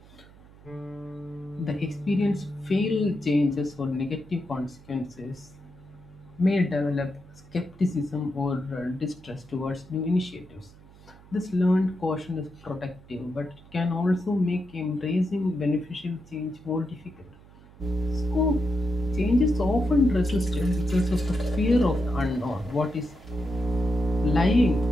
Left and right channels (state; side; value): noise; right; hum, 23 dB below the sound